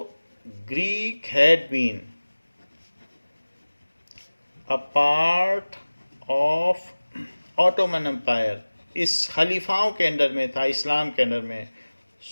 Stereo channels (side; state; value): both; inverted; correlation -1.00